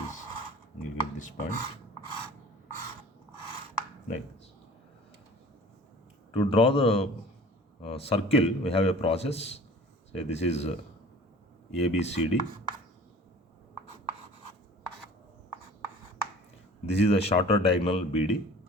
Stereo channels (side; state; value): both; normal; correlation 0.45